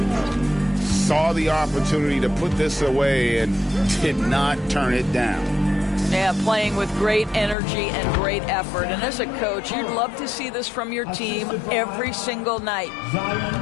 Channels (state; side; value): drops out; right; at 7.6 s